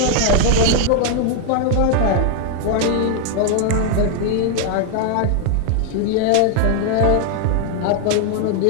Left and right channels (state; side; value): different; both; correlation 0.00